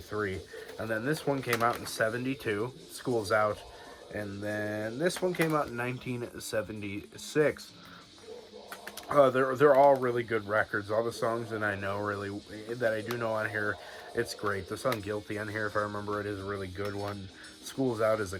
And then this one came out in 72, School's Out. And then this one came out in 1976. They're all really good records. All the songs that I do know on here, it's great. The song Guilty on here, if I remember it, is a really good one. School's Out is a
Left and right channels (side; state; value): both; identical; correlation 1.00